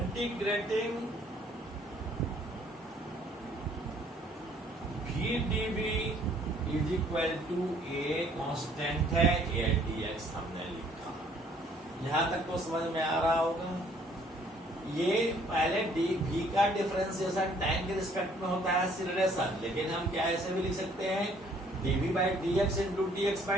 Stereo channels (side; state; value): both; normal; correlation 0.61